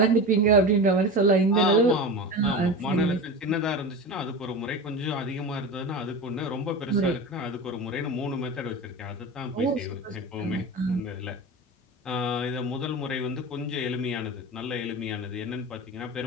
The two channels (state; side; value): normal; both; correlation 0.27